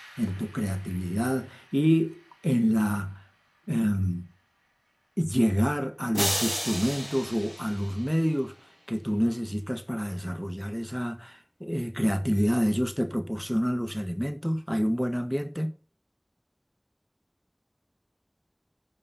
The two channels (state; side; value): identical; both; correlation 1.00